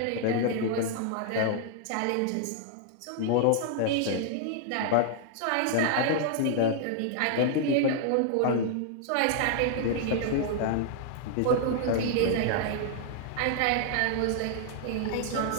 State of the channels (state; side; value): different; both; correlation -0.01